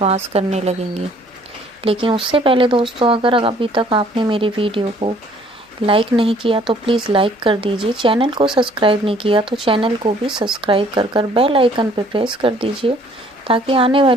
करने लगेंगे। लेकिन उससे पहले दोस्तों, अगर अभी तक आपने मेरी वीडियो को लाइक नहीं किया तो प्लीज़ लाइक कर दीजिए। चैनल को सब्सक्राइब नहीं किया तो चैनल को भी सब्सक्राइब कर बेल आइकन पर प्रेस कर दीजिए, ताकि आने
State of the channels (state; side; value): normal; both; correlation 0.59